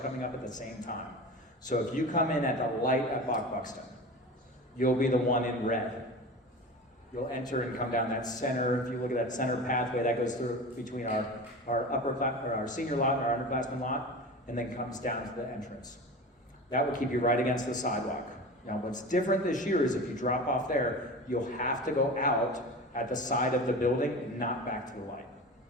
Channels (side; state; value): both; normal; correlation 0.32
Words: up at the same time. So if you come in at the light at Buxton, you'll be the one in red. You'll enter and come down that center. If you look at that center pathway that goes through between our senior lot and our underclassmen lot, and then comes down to the entrance. That will keep you right against the sidewalk. Now, what's different this year is if you drop off there, you'll have to go out at the side of the building and not back to the light.